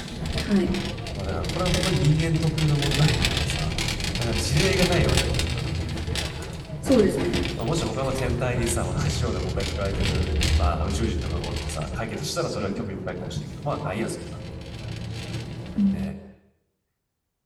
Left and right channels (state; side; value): identical; both; correlation 1.00